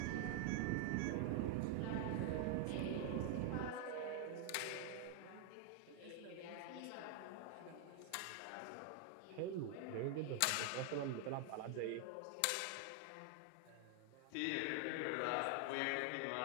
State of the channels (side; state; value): both; different; correlation 0.00